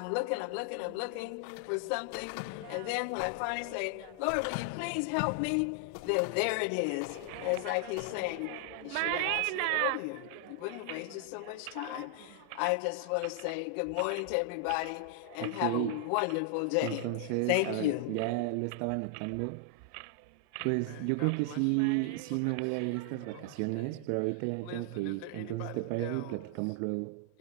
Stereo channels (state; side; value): different; both; correlation 0.00